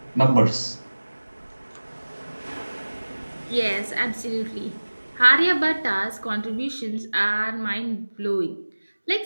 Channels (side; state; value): both; inverted; correlation -1.00